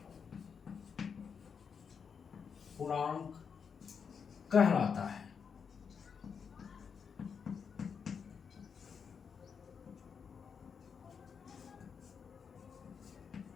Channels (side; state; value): right; quieter; 6.4 dB